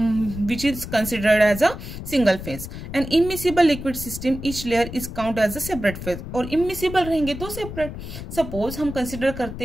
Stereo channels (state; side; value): noise; left; rumble, 9 dB below the sound